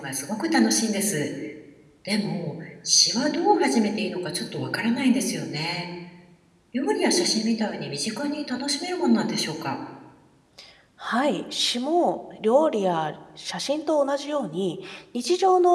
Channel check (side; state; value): both; identical; correlation 1.00